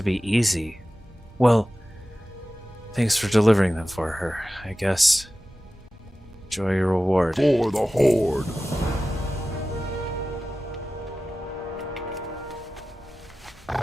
be easy. Well, thanks for delivering them for her, I guess. Enjoy your reward. For the Horde.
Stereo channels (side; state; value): both; normal; correlation 0.95